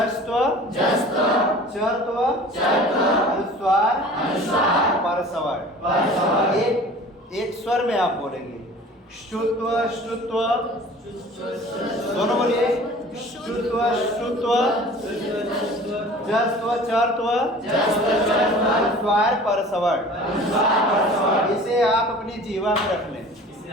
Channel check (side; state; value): both; normal; correlation 0.44